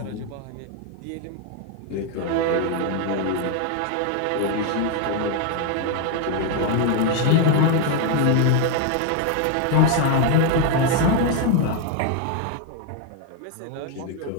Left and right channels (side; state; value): both; different; correlation 0.01